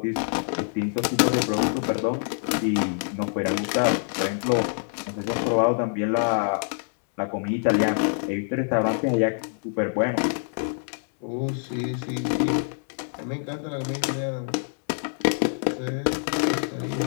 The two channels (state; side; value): silent; right; digital silence